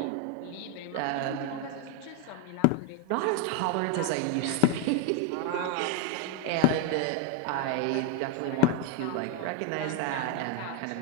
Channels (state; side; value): different; both; correlation 0.01